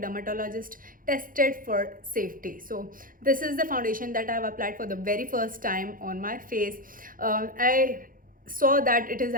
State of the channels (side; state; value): left; late; 0.40 ms